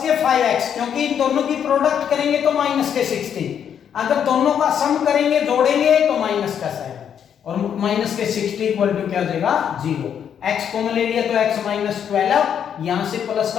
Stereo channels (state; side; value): quieter; right; 8.5 dB